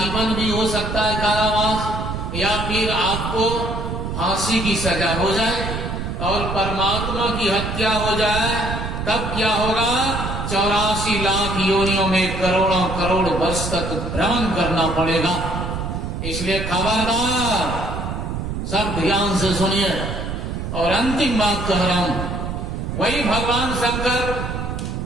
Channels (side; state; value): right; noise; rumble, 4 dB below the sound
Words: भी हो सकता है कारावास, या फिर आपको फांसी की सजा हो जाए। और परमात्मा की हत्या हो जाए तब क्या होगा? 84 लाख योनियों में करोड़ों करोड़ वर्ष तक भ्रमण करना पड़ेगा। इसलिए खबरदार, सब ध्यान से सुनिए। और अंतिम बात कह रहा हूं, वही भगवान शंकर